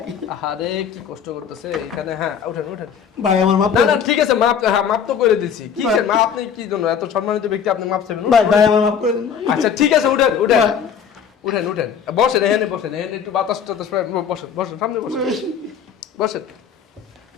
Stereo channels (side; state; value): right; quieter; 7.5 dB